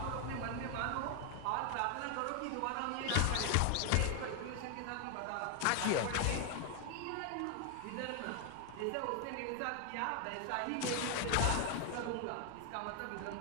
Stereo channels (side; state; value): both; different; correlation 0.00